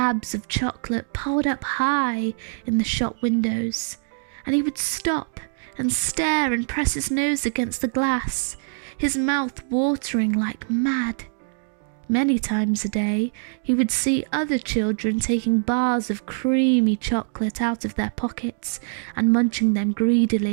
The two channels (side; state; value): left; silent; digital silence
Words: of chocolate piled up high in the shop windows, and he would stop and stare and press his nose against the glass, his mouth watering like mad. Many times a day, he would see other children taking bars of creamy chocolate out of their pockets and munching them